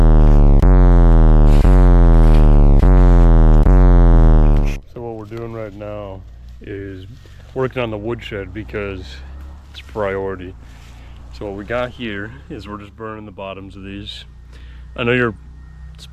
So what we're doing right now is working on the woodshed because it's priority. So what we got here is we're just burning the bottoms of these. I know you're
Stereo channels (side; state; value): both; identical; correlation 1.00